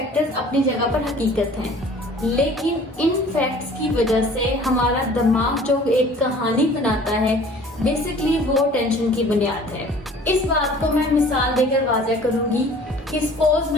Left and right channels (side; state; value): both; normal; correlation 0.49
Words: अपनी जगह पर हकीकत हैं, लेकिन इन फैक्ट्स की वजह से हमारा दिमाग जो एक कहानी बनाता है, बेसिकली वो टेंशन की बुनियाद है। इस बात को मैं मिसाल देकर वाज़ह करूंगी कि सपोज